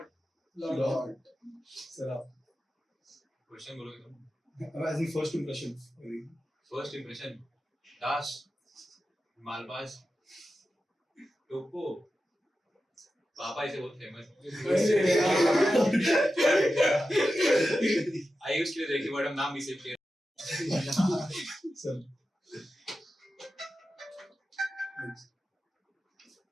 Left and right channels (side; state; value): both; normal; correlation 0.92